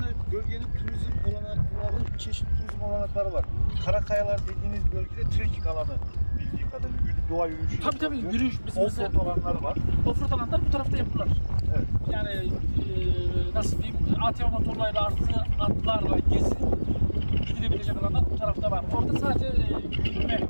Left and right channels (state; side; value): inverted; both; correlation -1.00